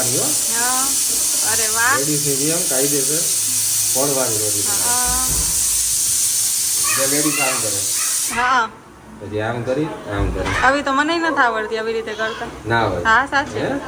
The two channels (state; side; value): identical; both; correlation 1.00